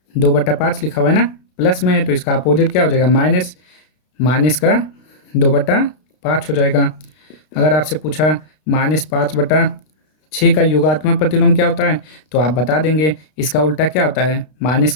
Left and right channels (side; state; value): right; late; 32 ms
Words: 2/5 लिखा हुआ है ना, प्लस में है तो इसका अपोजिट क्या हो जाएगा, माइनस। माइनस का 2/5 हो जाएगा। अगर आपसे पूछा -5/6 का योगात्मक प्रतिलोम क्या होता है, तो आप बता देंगे इसका उल्टा क्या होता है, माइनस